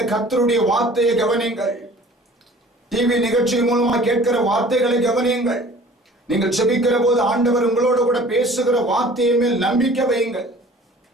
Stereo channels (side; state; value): both; normal; correlation 0.48